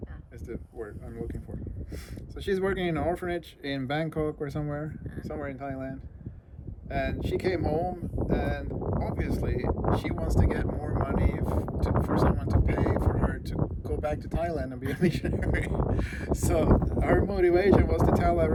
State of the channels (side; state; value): both; identical; correlation 1.00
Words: is the word I'm looking for. So she's working in an orphanage in Bangkok or somewhere in Thailand. And she came home, and obviously she wants to get more money for someone to pay for her to go back to Thailand and be a missionary. So her motivation was to tell